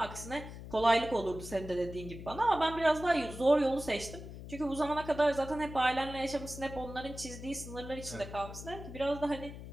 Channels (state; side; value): noise; left; hum, 12 dB below the sound